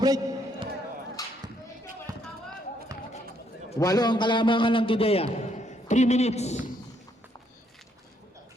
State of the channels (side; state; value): both; normal; correlation 0.71